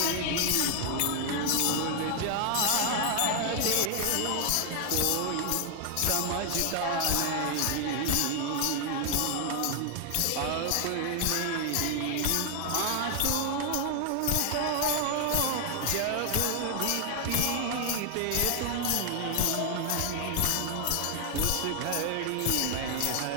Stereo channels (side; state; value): both; different; correlation 0.00